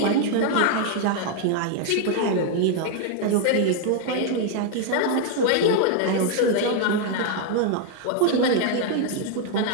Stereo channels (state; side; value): different; both; correlation 0.01